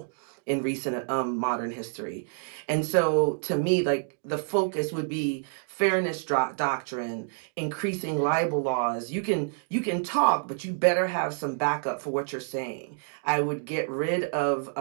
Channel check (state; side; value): silent; left; 59 dB below the other